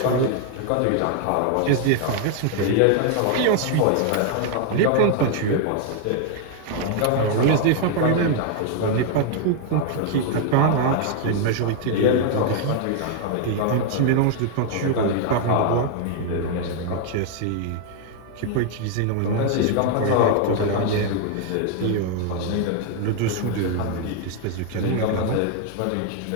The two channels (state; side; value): different; both; correlation 0.00